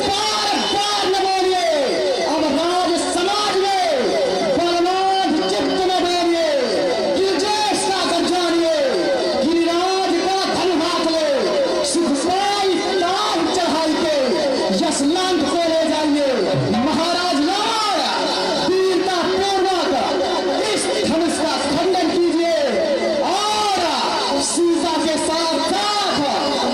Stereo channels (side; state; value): both; identical; correlation 1.00